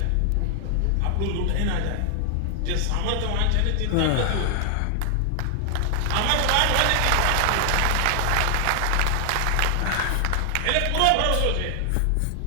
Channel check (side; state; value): both; different; correlation 0.00